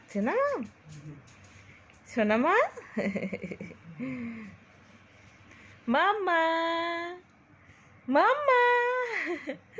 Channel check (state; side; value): identical; both; correlation 1.00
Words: না। শোনা মা, মাম্মা, মাম্মা,